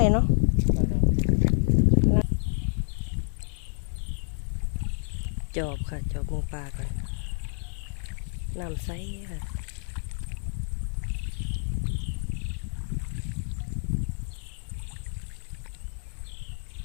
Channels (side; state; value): right; silent; 59 dB below the other